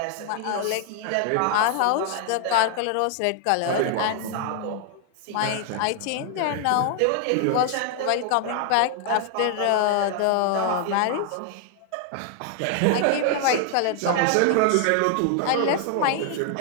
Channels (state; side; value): different; both; correlation 0.00